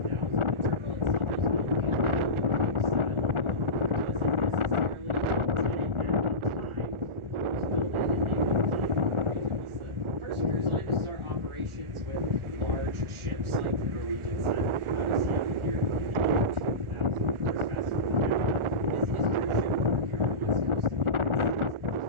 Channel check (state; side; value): late; left; 1.4 ms